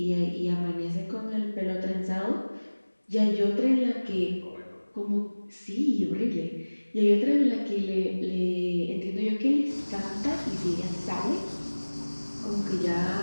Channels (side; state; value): both; inverted; correlation -1.00